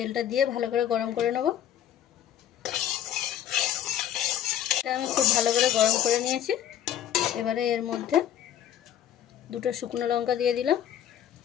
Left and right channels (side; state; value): right; quieter; 10.5 dB